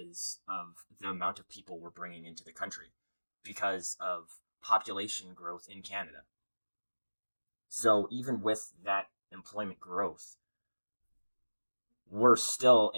of the amount of people we're bringing into the country, because of population growth in Canada. So even with that employment growth, we're still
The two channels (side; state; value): both; inverted; correlation -1.00